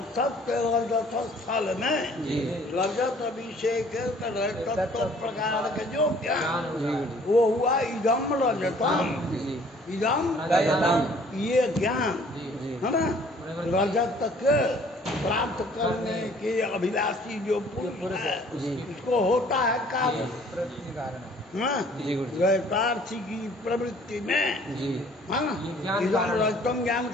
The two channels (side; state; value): both; normal; correlation 0.56